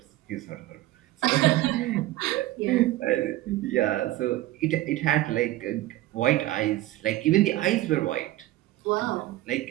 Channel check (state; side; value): quieter; left; 16.2 dB